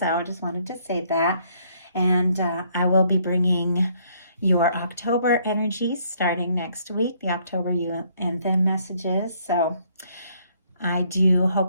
I just wanted to say that. And I will be bringing your October energies starting next week, the October you and them messages. So I do hope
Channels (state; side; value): inverted; both; correlation -0.66